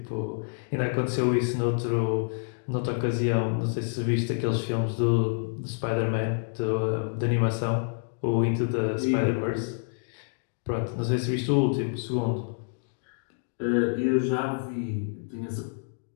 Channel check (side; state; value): right; silent; digital silence